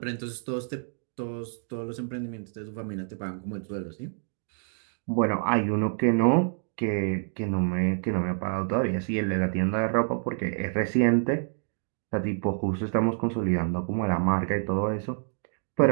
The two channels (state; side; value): silent; left; digital silence